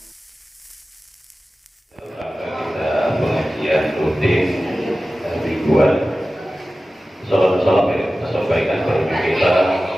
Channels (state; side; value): normal; both; correlation 0.95